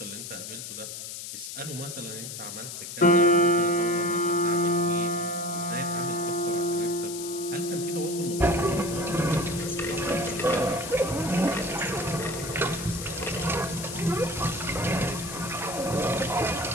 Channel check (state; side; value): noise; left; hiss, 8 dB below the sound